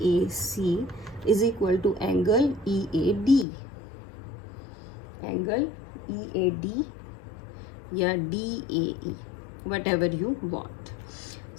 is equal to angle EAD. Angle EAD या DAE, whatever you want.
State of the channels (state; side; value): drops out; right; at 3.5 s